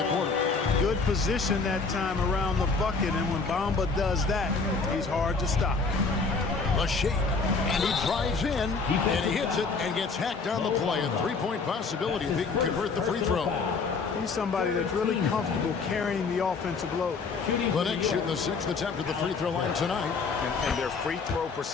quarter. Good position that time around the bucket, and when Bamba does that, he's hard to stop. A shake, and he drives in, and he hits it and gets hacked on the play. A three-point possibility if he can convert the free throw. He's somebody that's really comfortable carrying the offensive load. The Knicks shooting the 6th attempt at the free throw line tonight. And their free throw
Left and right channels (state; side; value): quieter; right; 4.5 dB